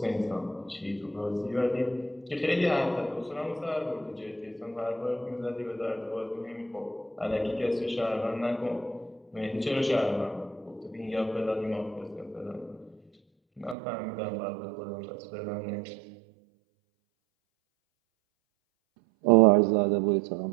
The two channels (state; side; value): drops out; left; at 13.8 s